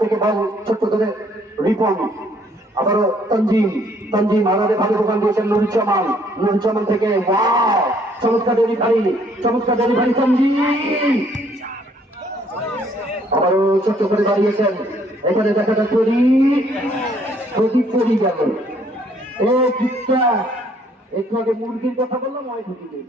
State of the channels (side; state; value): both; normal; correlation 0.64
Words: থেকে বল ছোট্ট করে রিপন, আবারও তানজিম আলাদা ভালো দোকান দিয়েছেন নুরুজ্জামান থেকে চমৎকার ডেলিভারি তানজিম আবারও ছোট্ট করে দাঁড়িয়েছেন। এখানে দেখা যাক প্রদীপ চলি গেল। একটু আগে মুরগির কথা বললাম, ওই ঢুকিয়ে